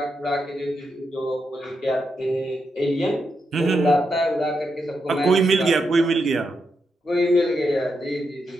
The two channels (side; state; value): both; normal; correlation 0.84